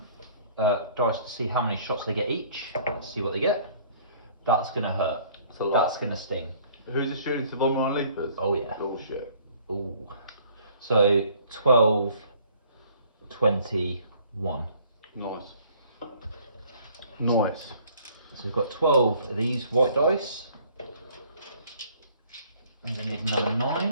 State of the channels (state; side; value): inverted; both; correlation -0.56